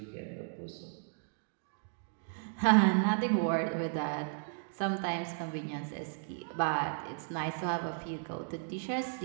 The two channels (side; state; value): left; silent; digital silence